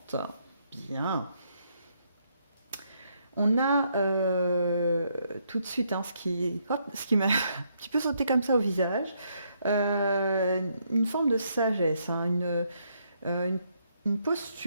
Bien. On a tout de suite ce qui m'a un petit peu sauté comme ça au visage, une forme de sagesse, une une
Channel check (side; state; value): both; inverted; correlation -0.74